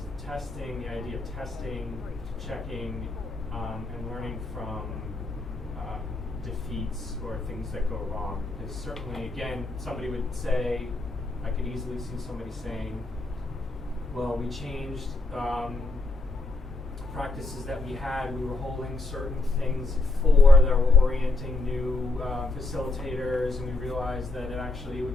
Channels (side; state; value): right; quieter; 3.1 dB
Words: testing, the idea of testing, checking, and learning from defeats or things that go wrong. Because certainly, again, somebody would say, I could easily see somebody saying, well, we changed practices that we had. We were holding certain things for that were orienting new facilitators, and we realized that it